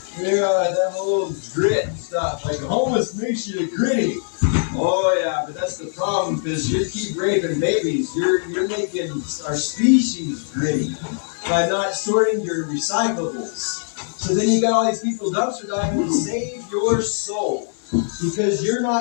That whole grit stuff, like homeless makes you gritty. Oh yeah, but that's the problem because you keep raping babies. You're making our species gritty by not sorting your recyclables. So then you got all these people dumpster diving to save your soul because you're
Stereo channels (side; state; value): right; silent; 64 dB below the other